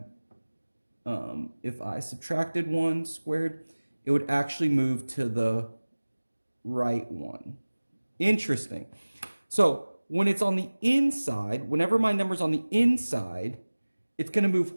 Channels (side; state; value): both; inverted; correlation -1.00